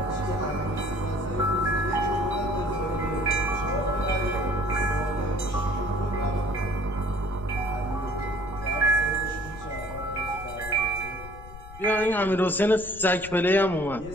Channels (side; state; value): left; noise; rumble, 15 dB below the sound